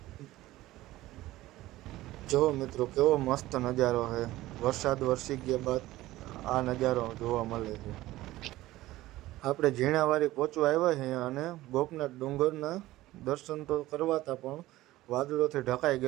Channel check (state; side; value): quieter; left; 16.7 dB